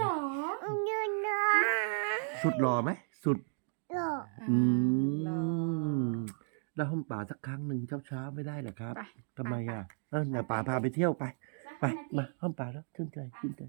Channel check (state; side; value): silent; left; digital silence